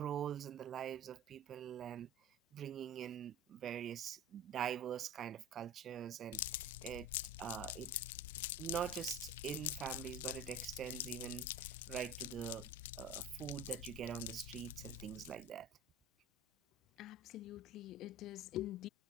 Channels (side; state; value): both; normal; correlation 0.33